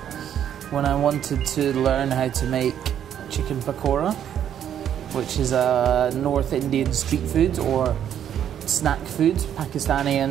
when I wanted to learn how to make chicken pakora, which is a North Indian street food or snack food, Pakistani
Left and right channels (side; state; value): left; quieter; 9.8 dB